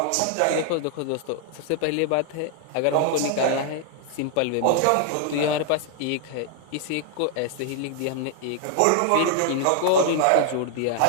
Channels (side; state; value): both; different; correlation 0.00